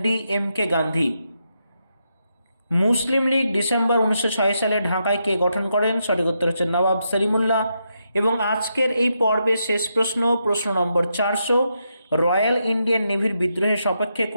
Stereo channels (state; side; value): inverted; both; correlation -0.82